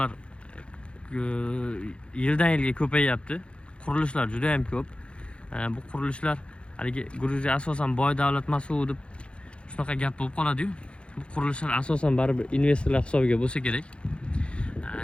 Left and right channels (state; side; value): late; right; 0.058 ms